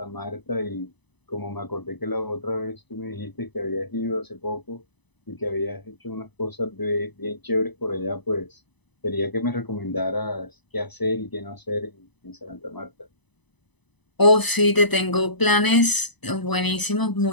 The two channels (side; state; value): right; late; 1.0 ms